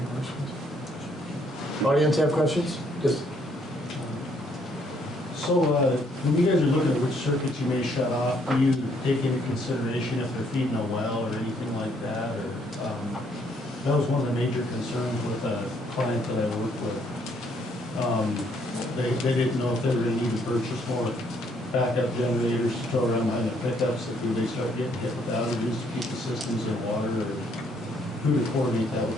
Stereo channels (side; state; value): both; normal; correlation 0.69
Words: questions? Audience have questions? Just. So when you guys are looking at which circuits you may shut off, do you take into consideration if they're feeding a well or anything like that? Or that was one of the major concerns with a client that I worked with. They didn't know if they were going to need to purchase more backup generators to throw around behind their pickups if they start getting hit with outages to keep the systems in water, or who to coordinate that